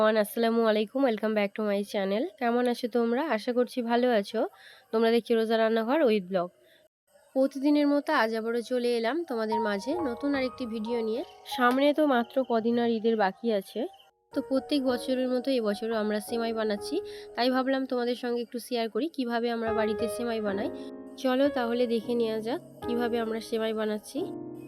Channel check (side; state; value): both; identical; correlation 1.00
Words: আসসালামু আলাইকুম। Welcome back to my channel. কেমন আছো তোমরা? আশা করছি ভালো আছো। তোমরা দেখছি রোজা রান্নাঘর উইথ ব্লগ। প্রতিদিনের মতো আজ আবারও চলে এলাম তোমাদের মাঝে নতুন আরেকটি ভিডিও নিয়ে। সামনে তো মাত্র কদিন আর ঈদের বাকি আছে, তো প্রত্যেক বছরের মতো এবছরও আমরা সেমাই বানাচ্ছি। তাই ভাবলাম তোমাদের সঙ্গে একটু শেয়ার করি কিভাবে আমরা বাড়িতে সেমাই বানাই। চলো তাহলে দেখে নেওয়া যাক কিভাবে আমরা সেমাই বানাচ্ছি।